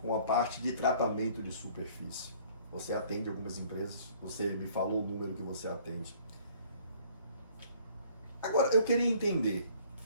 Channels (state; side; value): inverted; both; correlation -0.57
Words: a parte de tratamento de superfície. Você atende algumas empresas. Você me falou o número que você atende. Agora, eu queria entender